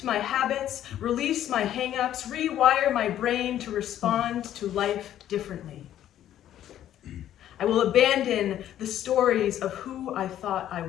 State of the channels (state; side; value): quieter; right; 11.6 dB